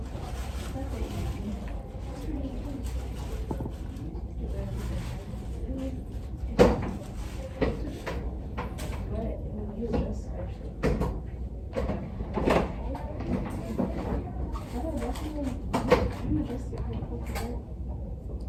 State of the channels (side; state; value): both; identical; correlation 1.00